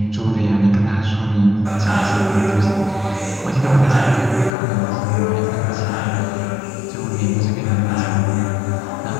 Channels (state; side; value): drops out; right; at 4.5 s